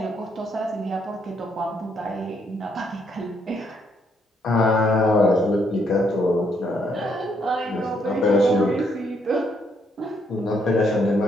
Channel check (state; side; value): normal; both; correlation 0.72